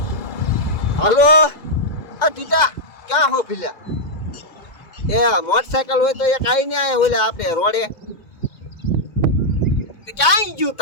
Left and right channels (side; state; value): right; late; 2.0 ms